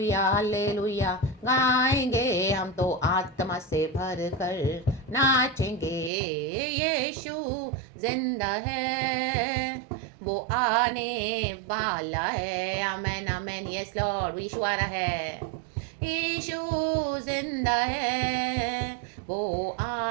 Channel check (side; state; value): left; drops out; at 6.1 s